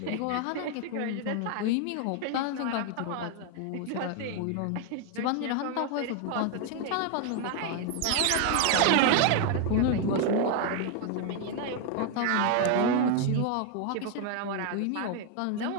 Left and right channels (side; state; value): both; different; correlation 0.01